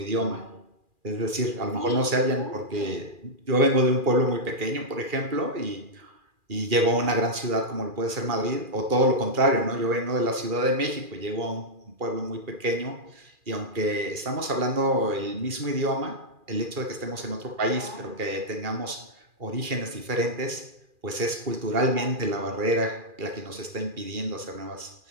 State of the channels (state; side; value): late; left; 2.4 ms